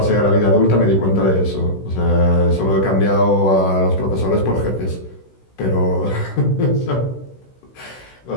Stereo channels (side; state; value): right; late; 16 ms